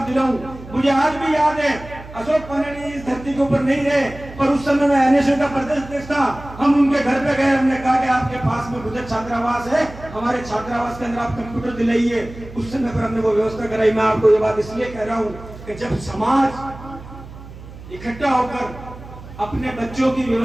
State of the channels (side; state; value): right; noise; hum, 16 dB below the sound